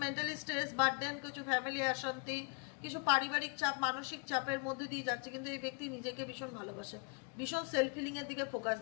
মেন্টালি স্ট্রেস, বার্ডেন, কিছু ফ্যামিলি অশান্তি, কিছু পারিবারিক চাপ, মানসিক চাপের মধ্যে দিয়ে যাচ্ছে, কিন্তু এই ব্যক্তি নিজেকে ভীষণ ভালোবাসে, ভীষণ সেলফ হিলিং এর দিকে ফোকাস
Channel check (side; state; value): right; quieter; 36.4 dB